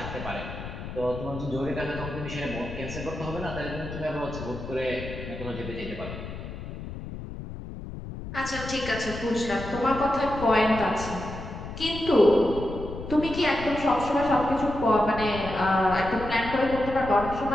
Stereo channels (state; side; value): noise; left; rumble, 9 dB below the sound